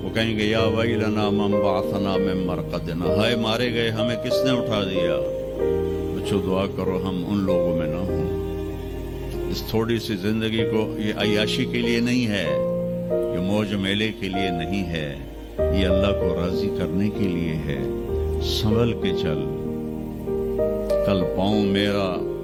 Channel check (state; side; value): identical; both; correlation 1.00